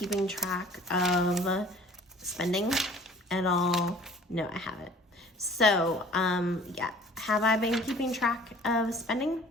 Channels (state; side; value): normal; both; correlation 0.49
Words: track of spending at all? No, I haven't. So yeah, have I been keeping track of spending?